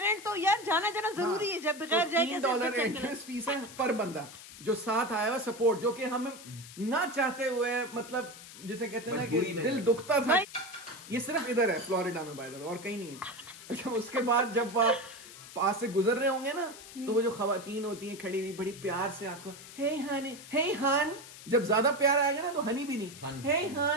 तो यार जाना जरूरी है, जब बगैर जाए कैसे $3 बच्चा एंट्रेंस फीस है पर बंदा जो साथ आया हुआ सपोर्ट, जो कि हम ना चाहते हुए मतलब जिसे कहते हैं ना कि मजबूरी में दिल है। दुखता था। ये सिर्फ इधर है फ्लोरिडा में बाय द वे, और कहीं नहीं है। अच्छा उसके बाद जब आप पास से गुजर रहे होंगे ना तो वो जो खवातीन होती हैं खड़ी हुई बड़ी प्यार से आपको हे हनी, हे हन, जब ज्यादा प्यार आएगा ना तो हनी भी नहीं, हन। हे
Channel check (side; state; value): left; noise; hiss, 16 dB below the sound